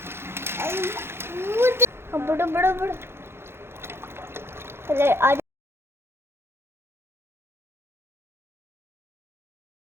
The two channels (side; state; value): left; late; 0.12 ms